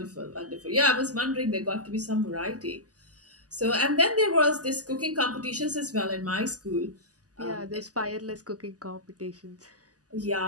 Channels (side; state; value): left; late; 0.67 ms